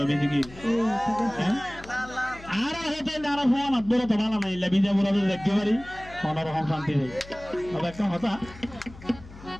বেদিকে হ্যাঁ আর হতে নারা ফোন বড় তো ভালো নাই লাবিজা বড় দেখতে পারি অন্যরকম শান্তি নেই তবে একটা কথা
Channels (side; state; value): left; noise; hum, 18 dB below the sound